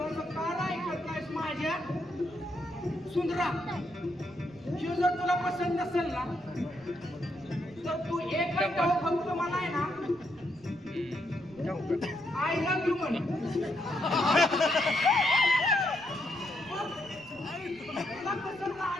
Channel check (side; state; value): right; noise; rumble, 25 dB below the sound